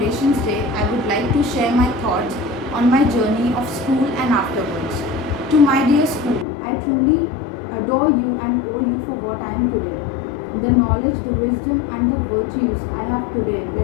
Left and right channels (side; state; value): right; drops out; at 6.5 s